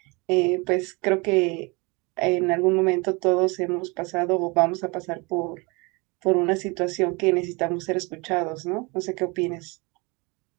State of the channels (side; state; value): left; quieter; 27.7 dB